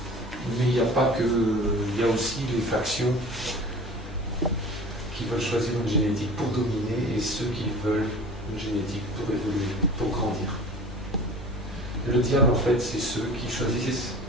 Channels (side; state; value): both; normal; correlation 0.40